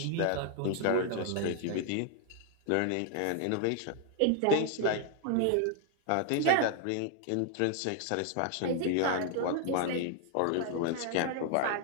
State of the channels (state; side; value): different; both; correlation 0.00